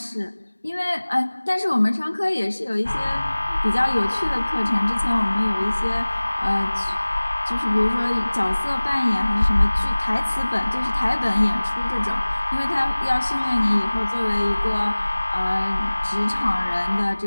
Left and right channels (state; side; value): inverted; both; correlation -1.00